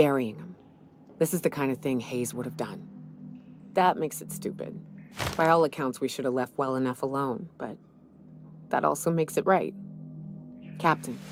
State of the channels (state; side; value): identical; both; correlation 1.00